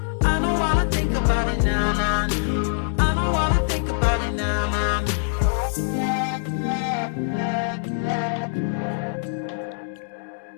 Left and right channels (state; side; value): silent; right; digital silence